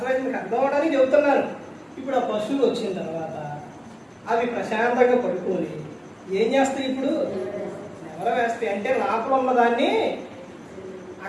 మీకు అర్థం అవడానికి చెబుతున్నాను. ఇప్పుడు ఆ పశువులు వచ్చిన తర్వాత అవి ప్రశాంతంగా పడుకొని ఏం చేస్తాయి? ఇప్పుడు ఎవరో వేస్తాయి అంటే లోపల ఉన్నదాన్ని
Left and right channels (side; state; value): both; identical; correlation 1.00